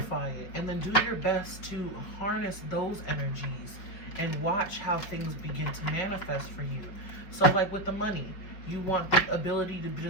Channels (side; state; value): right; late; 5.2 ms